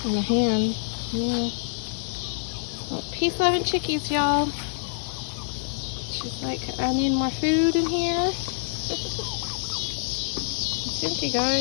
in the hand. Yeah. Well, peace, love, and chickies, y'all. She's like, I need more food in here. It's empty,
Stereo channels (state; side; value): silent; right; digital silence